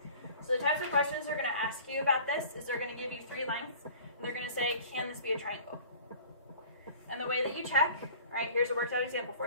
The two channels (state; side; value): inverted; both; correlation -0.45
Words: So the types of questions they're going to ask you about this is they're going to give you 3 lengths, and they're going to say, can this be a triangle? And the way that you check, right, here's a worked out example